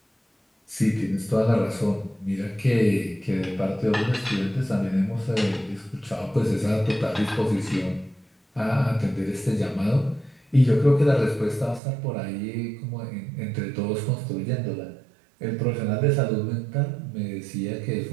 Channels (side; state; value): left; drops out; at 11.8 s